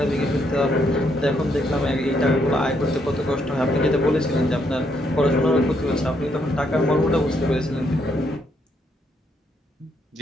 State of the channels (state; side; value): normal; both; correlation 0.74